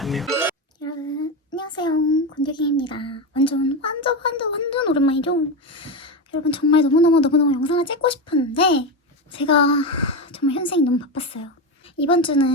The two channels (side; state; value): both; normal; correlation 0.15